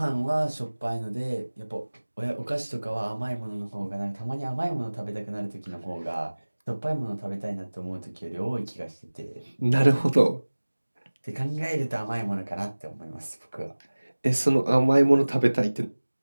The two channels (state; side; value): inverted; both; correlation -1.00